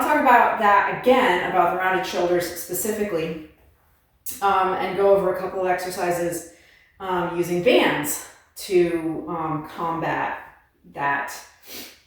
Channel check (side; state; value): both; identical; correlation 1.00